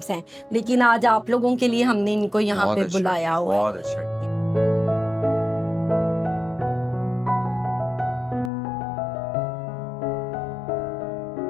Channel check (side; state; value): right; drops out; at 8.5 s